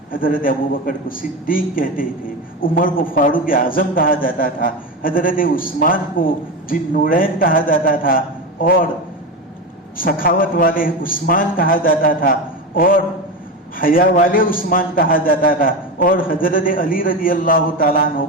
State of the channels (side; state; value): both; normal; correlation 0.19